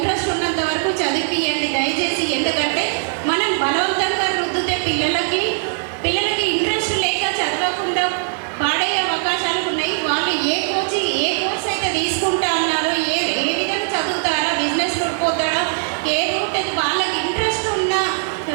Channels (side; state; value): left; silent; digital silence